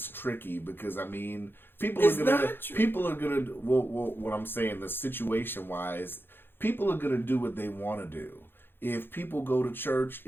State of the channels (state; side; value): late; right; 0.10 ms